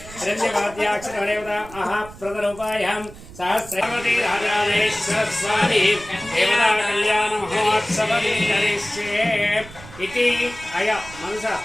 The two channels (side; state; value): right; noise; rumble, 17 dB below the sound